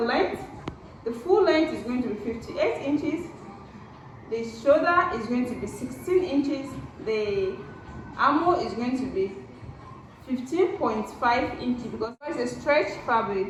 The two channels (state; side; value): identical; both; correlation 1.00